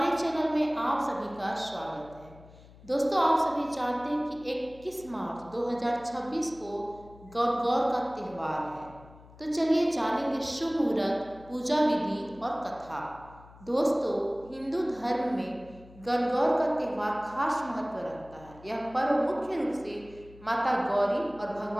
चैनल में आप सभी का स्वागत है। दोस्तों, आप सभी जानते हैं कि 21 मार्च 2026 को गणगौर का त्यौहार है। तो चलिए जानेंगे शुभ मुहूर्त, पूजा विधि और कथा। दोस्तों, हिंदू धर्म में गणगौर का त्यौहार खास महत्व रखता है। यह पर्व मुख्य रूप से माता गौरी और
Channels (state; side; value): noise; left; hum, 22 dB below the sound